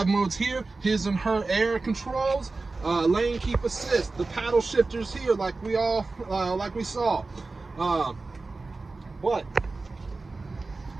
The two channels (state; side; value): quieter; left; 3.6 dB